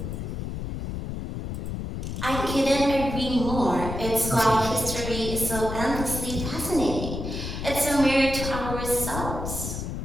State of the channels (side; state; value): left; noise; rumble, 5 dB below the sound